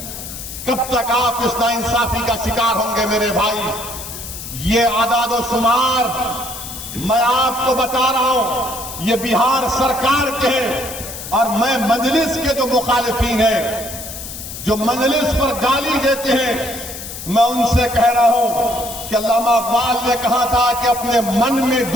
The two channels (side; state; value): left; noise; hiss, 10 dB below the sound